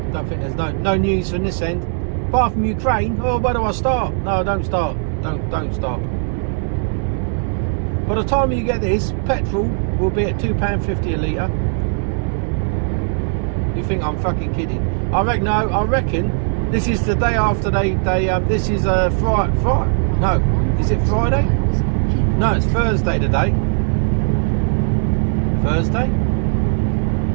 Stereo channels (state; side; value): silent; left; 56 dB below the other